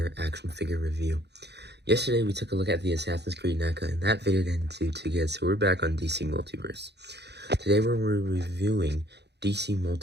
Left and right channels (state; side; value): late; left; 0.49 ms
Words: action figure review. Yesterday, we took a look at the Assassin's Creed NECA, and that video didn't do too good, so we're back on DC Multiverse. Today, we're reviewing DC